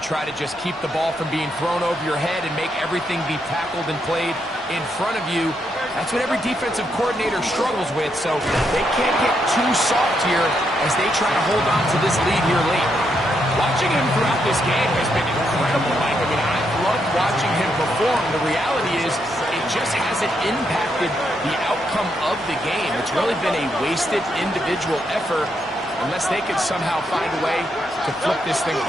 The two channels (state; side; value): normal; both; correlation 0.79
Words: to just keep the ball from being thrown over your head and make everything be tackled and played in front of you? That's what every defensive coordinator struggles with, so they can't get too soft here as they try to hold on to this lead here late. Watching him throughout this game has been incredible, Mike. I mean, I've loved watching him perform. The reality is it just hasn't impacted the outcome of the game. It's really been a wasted individual effort unless they could somehow find a way to flip this thing